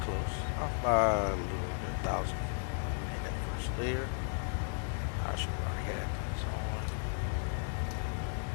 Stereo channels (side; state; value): right; silent; 55 dB below the other